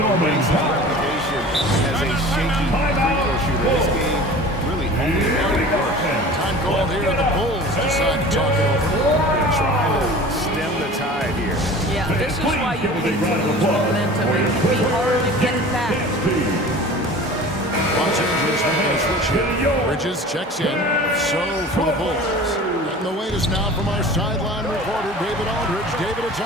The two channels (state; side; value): normal; both; correlation 0.40